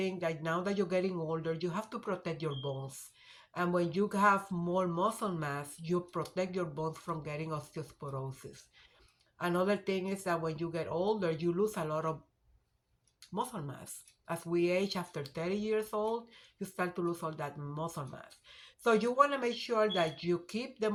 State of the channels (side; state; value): both; identical; correlation 1.00